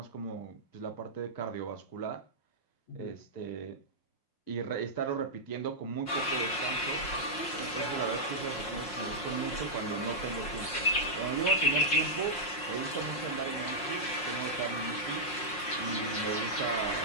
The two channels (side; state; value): right; late; 5.6 ms